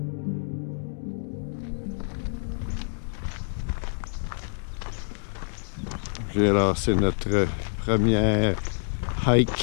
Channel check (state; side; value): silent; right; 60 dB below the other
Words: Alors, c'est notre première